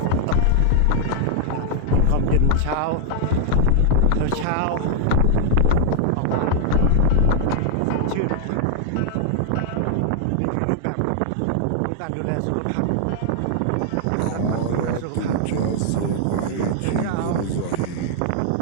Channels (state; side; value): different; both; correlation -0.01